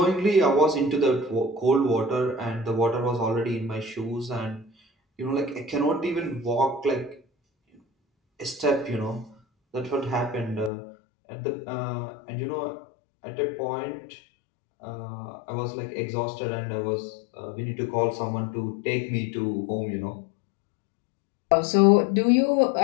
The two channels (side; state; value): right; drops out; at 10.7 s